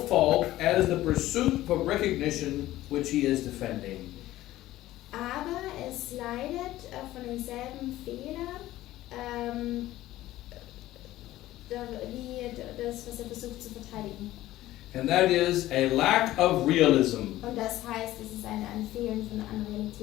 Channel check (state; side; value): quieter; right; 15.4 dB